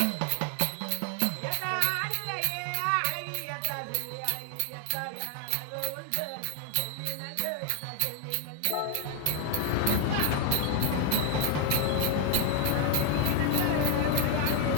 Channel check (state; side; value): different; both; correlation 0.00